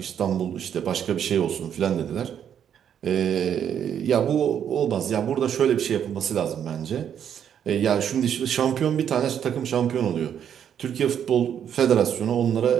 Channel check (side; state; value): left; quieter; 8.9 dB